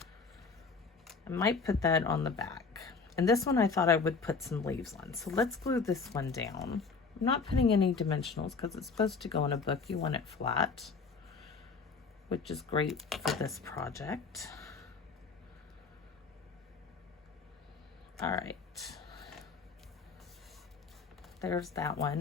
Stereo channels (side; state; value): right; quieter; 4.8 dB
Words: I might put that on the back, and this one I thought I would put some leaves on. So let's glue this one down. I'm not putting any dimensionals because it's supposed to go in a book. You want it flat, which is great for this project. All right, there's that